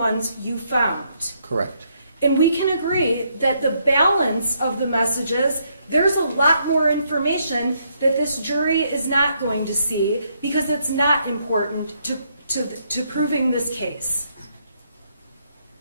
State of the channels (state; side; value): inverted; both; correlation -0.74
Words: you found. Correct. And we can agree that the balance of the messages, there's a lot more information that this jury is not going to see because it's not important to proving this case.